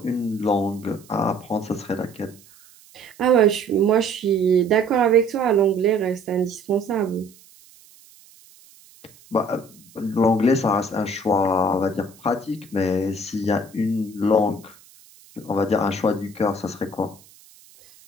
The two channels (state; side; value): noise; right; hiss, 26 dB below the sound